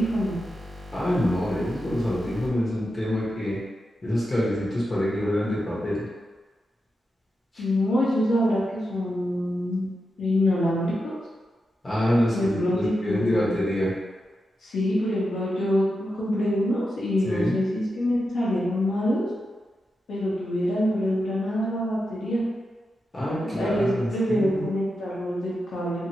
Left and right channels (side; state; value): both; normal; correlation 0.88